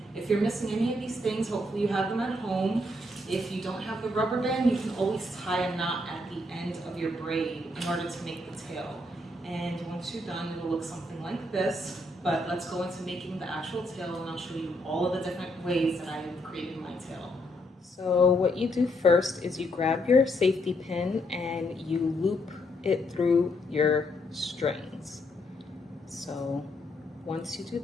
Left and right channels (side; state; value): both; normal; correlation 0.74